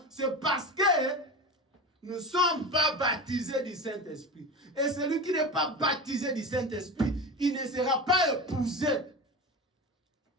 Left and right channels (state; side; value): normal; both; correlation 0.26